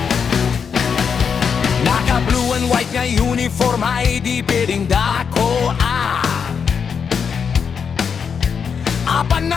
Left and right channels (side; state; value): right; quieter; 6.5 dB